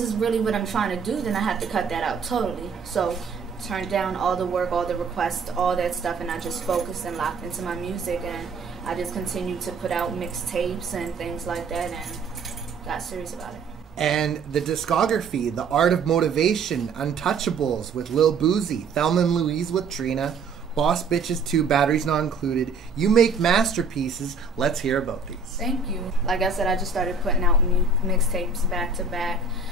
is really what I'm trying to do, then I have to cut that out totally. So turned down all the work, all the requests, all that stuff, and I just focused and locked into my music, and I just continued to put out mixtapes and things like that and got serious about it. And the discography, The Art of Motivation, Untouchables with Lil Boozy, Thelma and Louise with Trina, Boss Bitches 2, Batteries Not Included. You make masterpieces. Let's hear about these. Thank you. Like I said, I just started putting out mixtapes back to back.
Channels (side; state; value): left; quieter; 4.5 dB